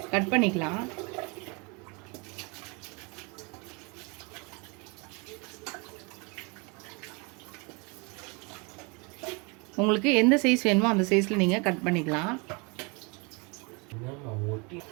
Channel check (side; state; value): left; quieter; 30.1 dB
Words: கட் பண்ணிக்கலாம். உங்களுக்கு எந்த சைஸ் வேணுமோ அந்த சைஸில் நீங்கள் கட் பண்ணிக்கலாம்.